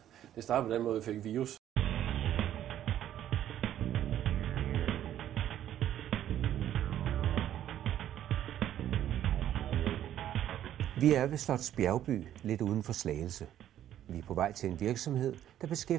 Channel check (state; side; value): quieter; left; 11.5 dB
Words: det startede på den måde, vi fik virus. Vi er ved Slots Bjergby, lidt uden for Slagelse. Vi er på vej til en virksomhed, der